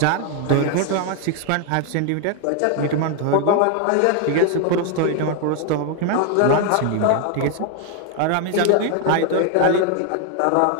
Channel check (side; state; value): both; different; correlation 0.00